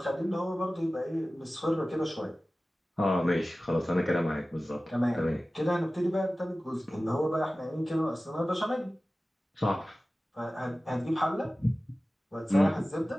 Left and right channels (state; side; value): normal; both; correlation 0.96